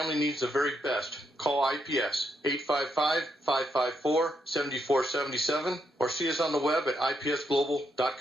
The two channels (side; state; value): both; normal; correlation 0.79